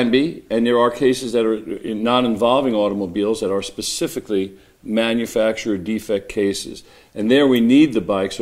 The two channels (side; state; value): both; identical; correlation 1.00